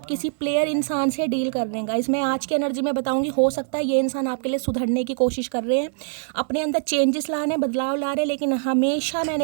किसी प्लेयर इंसान से डील कर रहे हैं गाइस। मैं आज की एनर्जी में बताऊंगी, हो सकता है ये इंसान आपके लिए सुधरने की कोशिश कर रहे हैं, अपने अंदर चेंजेस लाने, बदलाव ला रहे हैं, लेकिन हमेशा मैंने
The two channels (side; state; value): left; silent; 60 dB below the other